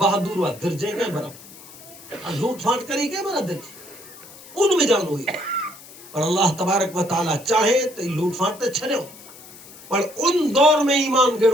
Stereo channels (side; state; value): left; noise; hiss, 19 dB below the sound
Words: وا درجے کے برابر لوٹ پھاٹ کری کے برابر درجے ان میں جان ہوئی پر اللہ تبارک و تعالی چاہے تے لوٹ پھاٹ تے چھڑو پر ان دور میں ایمان